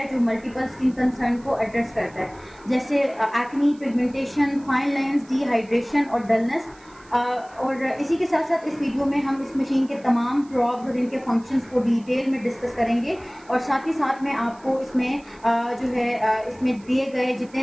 जो मल्टीपल स्किन कंसर्न को एड्रेस करता है, जैसे acne, pigmentation, fine lines, dehydration और डलनेस। और इसी के साथ साथ इस वीडियो में हम इस मशीन के तमाम प्रॉब्स और इनके फंक्शंस को डिटेल में डिस्कस करेंगे और साथ ही साथ में आपको इसमें इसमें दिए गए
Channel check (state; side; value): noise; right; hiss, 27 dB below the sound